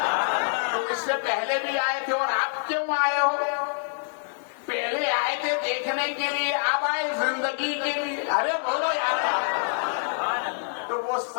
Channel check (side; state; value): right; silent; digital silence